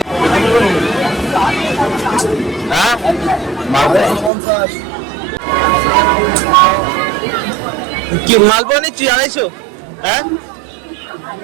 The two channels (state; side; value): drops out; left; at 4.3 s